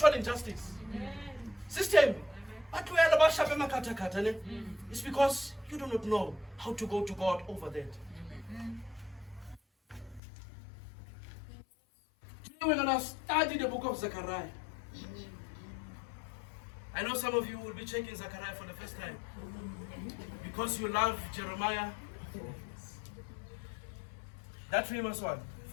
injustice. System. But it's because you do not know how to go to God over that. Today we're going to study the book of Zechariah. I know some of you will be checking Zechariah for the first time because you love Jeremiah, that famous one.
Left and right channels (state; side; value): drops out; right; at 10.2 s